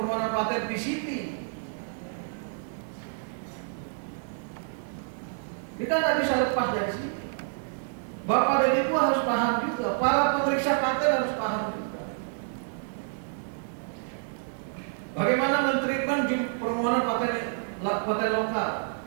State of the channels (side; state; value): left; silent; 59 dB below the other